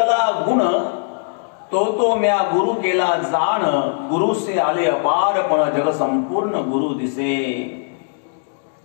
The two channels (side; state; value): right; silent; digital silence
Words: गुण तो तो म्या गुरु केला जाण, गुरु से आले अपार पण जग संपूर्ण गुरु दिसे.